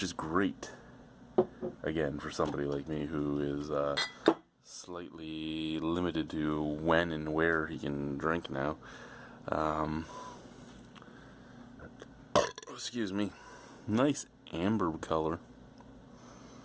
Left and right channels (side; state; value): both; identical; correlation 1.00